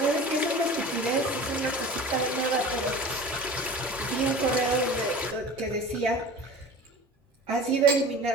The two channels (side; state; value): both; normal; correlation 0.38